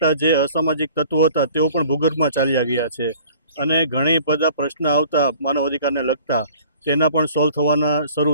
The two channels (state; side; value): inverted; both; correlation -0.50